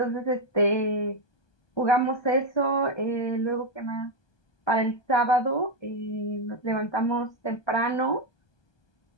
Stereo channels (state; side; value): late; right; 1.2 ms